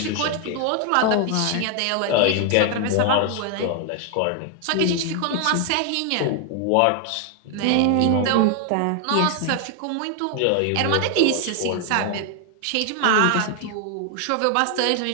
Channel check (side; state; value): both; different; correlation 0.00